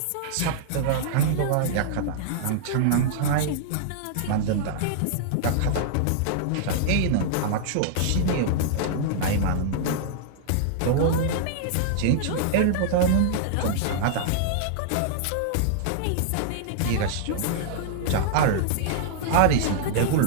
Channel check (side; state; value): both; different; correlation -0.01